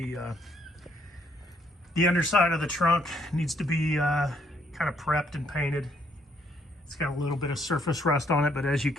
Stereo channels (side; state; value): both; normal; correlation 0.70